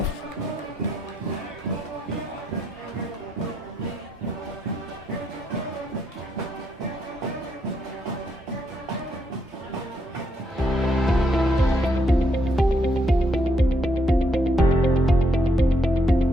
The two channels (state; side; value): normal; both; correlation 0.76